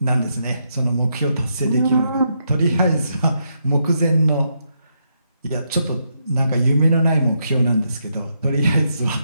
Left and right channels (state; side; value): inverted; both; correlation -0.80